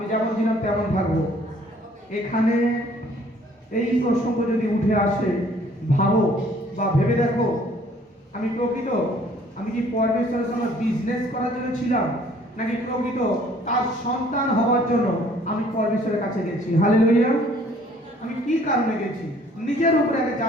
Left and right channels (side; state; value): both; normal; correlation 0.58